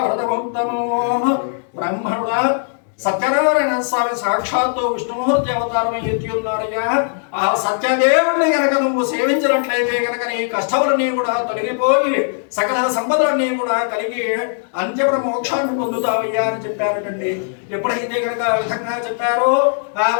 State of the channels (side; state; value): right; silent; digital silence